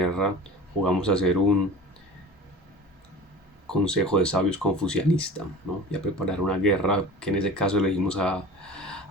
jugamos a hacer un consejo de sabios confucianista, ¿no? Y a preparar una guerra que en ese caso elegimos a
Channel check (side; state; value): both; normal; correlation 0.37